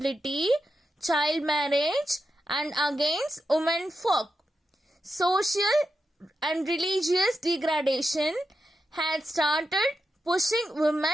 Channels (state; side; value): normal; both; correlation 0.88